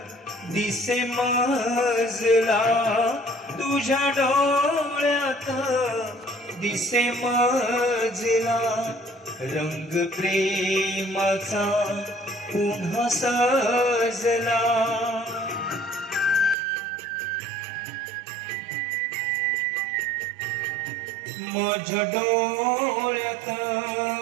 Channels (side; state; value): left; drops out; at 16.6 s